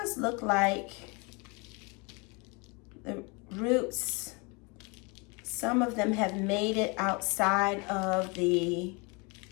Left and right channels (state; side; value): quieter; right; 30.2 dB